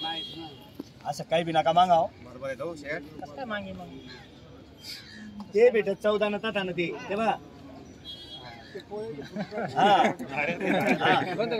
असं काही बी नका मागाव बरोबर आहे जाऊ शेट ते भेटत 14 न ताता न ते बघा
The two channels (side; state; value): both; identical; correlation 1.00